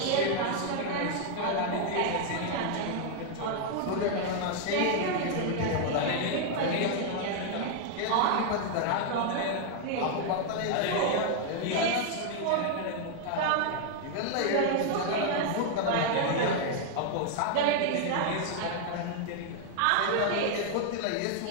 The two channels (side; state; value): both; different; correlation 0.00